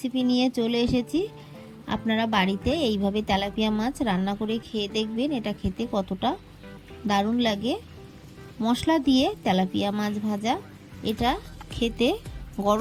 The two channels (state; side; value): identical; both; correlation 1.00